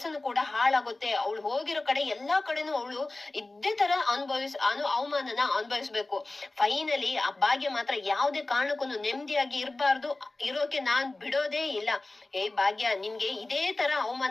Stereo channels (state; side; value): quieter; right; 3.0 dB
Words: ಕೂಡ ಹಾಳಾಗುತ್ತೆ. ಅವಳು ಹೋಗಿರೋ ಕಡೆ ಎಲ್ಲಾ ಕಡೆನೂ ಅವಳು ಇದೇ ತರ ಅವಮಾನನ ಅನುಭವಿಸ್ಬೇಕು. ಫೈನಲಿ ಆ ಭಾಗ್ಯ ಮಾತ್ರ ಯಾವ್ದೇ ಕಾರಣಕ್ಕೂ ನೆಮ್ಮದಿಯಾಗಿ ಇರೋಕೆ ನಾನ್ ಬಿಡೋದೇ ಇಲ್ಲ. ಭಾಗ್ಯ, ನಿನ್ಗೆ ಇದೇ ತರ